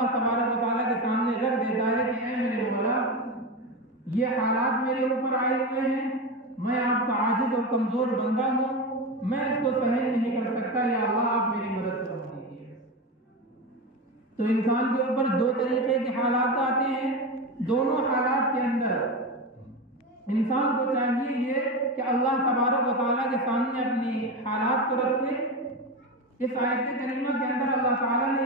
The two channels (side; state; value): both; normal; correlation 0.19